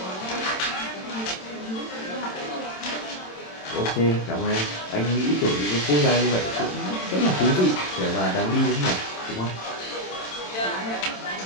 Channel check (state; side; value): late; right; 27 ms